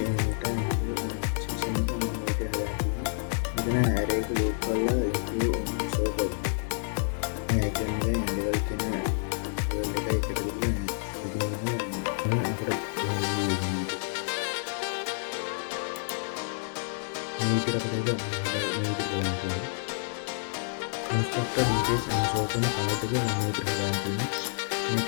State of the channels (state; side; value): silent; right; digital silence